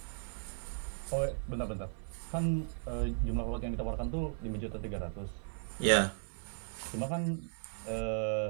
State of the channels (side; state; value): left; silent; 53 dB below the other